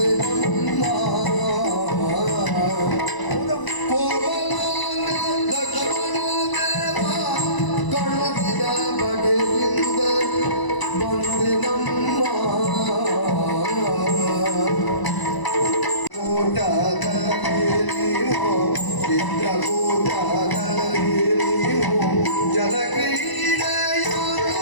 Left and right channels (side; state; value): right; late; 1.0 ms